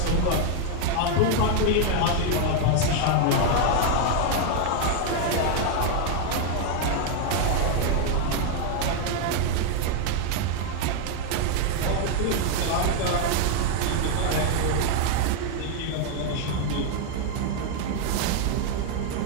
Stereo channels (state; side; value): different; both; correlation 0.00